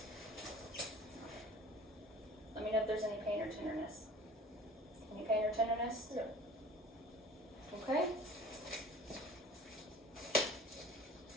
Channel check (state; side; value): normal; both; correlation 0.45